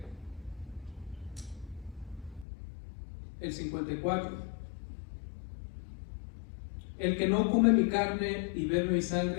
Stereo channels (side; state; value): right; drops out; at 2.5 s